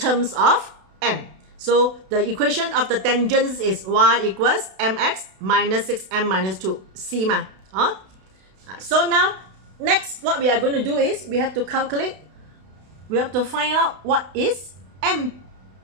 of m. So the equation of the tangents is y equals mx minus 6m minus 2, c ma. So now, next what we are going to do is, we have to calculate, we have to find out what is m.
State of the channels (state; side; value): late; left; 32 ms